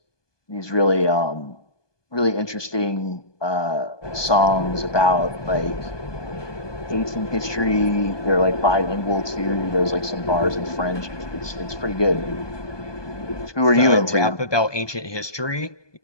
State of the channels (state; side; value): late; right; 1.2 ms